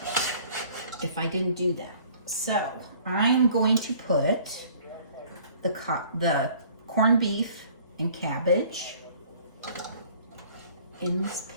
if I didn't do that. So I'm going to put the corned beef and cabbage in this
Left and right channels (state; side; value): inverted; both; correlation -0.54